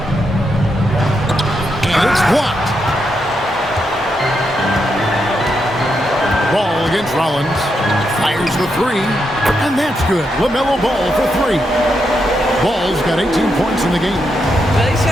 And it's blocked. Ball against Rollins. Fires the three. And that's good. LaMelo Ball for 3. Ball's got 18 points in the game. He's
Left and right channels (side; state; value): both; normal; correlation 0.82